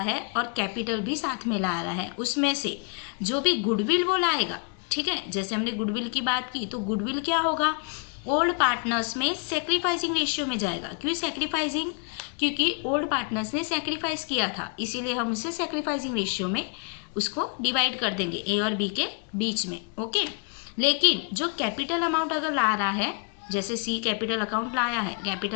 है और कैपिटल भी साथ में ला रहा है, उसमें से जो भी गुडविल वो लाएगा, ठीक है, जैसे हमने गुडविल की बात की तो गुडविल क्या होगा, ओल्ड पार्टनर्स में सेक्रीफाइसिंग रेशियो में जाएगा। क्यों सेक्रीफाइसिंग, क्योंकि ओल्ड पार्टनर्स ने सेक्रीफाइस किया था, इसीलिए हम उसे सेक्रीफाइसिंग रेशियो में उसको डिवाइड कर देंगे ए और बी के बीच में। ओके, लेकिन जो कैपिटल अमाउंट अगर ला रहा है, जैसे सी कैपिटल अकाउंट लाया है,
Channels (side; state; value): right; quieter; 36.6 dB